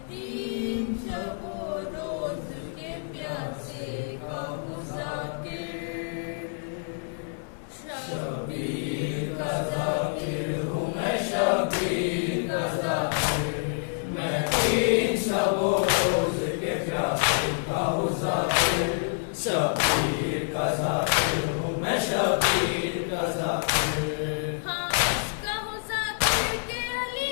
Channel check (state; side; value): silent; right; 60 dB below the other